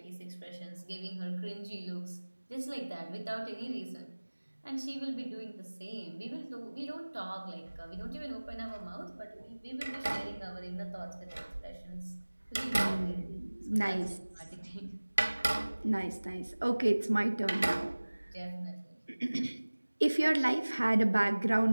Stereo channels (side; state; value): both; inverted; correlation -1.00